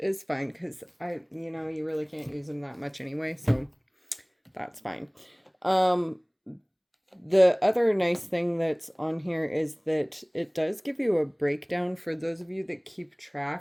fine because you really can't use them that much anyway, so that's fine. The other nice thing that's on here is that it does give you a breakdown for those of you that keep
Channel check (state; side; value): identical; both; correlation 1.00